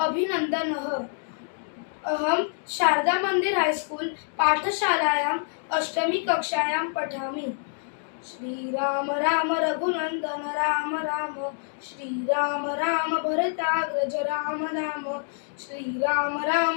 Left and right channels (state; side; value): silent; right; digital silence